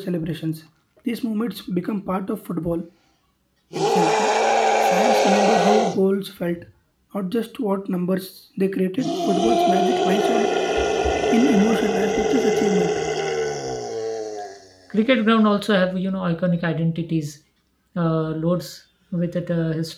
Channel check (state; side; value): identical; both; correlation 1.00